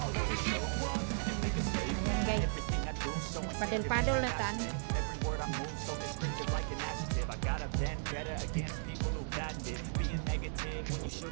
Ayan guys. Padel-padel na tan. I got a vendetta against people who patent it. Being negative when you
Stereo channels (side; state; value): left; silent; digital silence